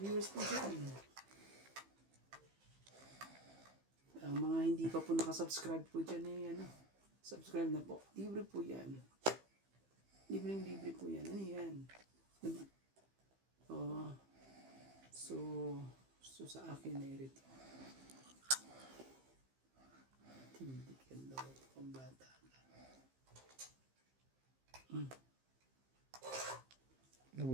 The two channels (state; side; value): late; left; 15 ms